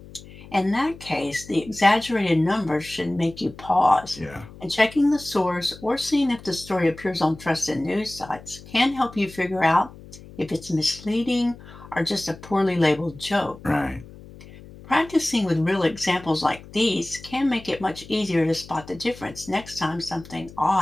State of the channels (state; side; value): noise; left; hum, 18 dB below the sound